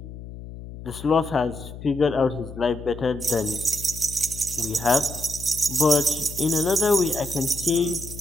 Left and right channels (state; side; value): noise; left; hum, 13 dB below the sound